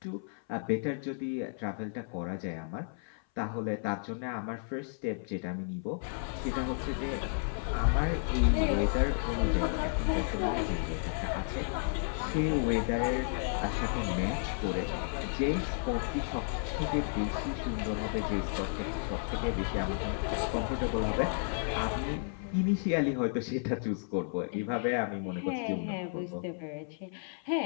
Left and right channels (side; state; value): right; silent; 56 dB below the other